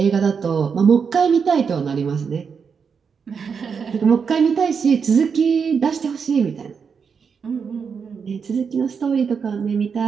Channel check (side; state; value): left; quieter; 6.1 dB